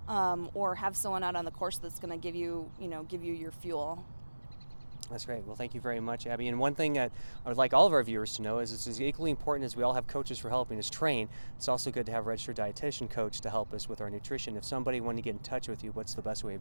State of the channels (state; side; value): inverted; both; correlation -1.00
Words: or have someone out on the course that's going to give you your fuel. That's great. Well, thank you very much, Abby. And one thing that I would like all of our viewers to know is it's as equally important as we all have coaches for helping us train. It's also good to have a registered dietitian coach to help us with our nutrition. If somebody wanted to get in touch with you, what's the best way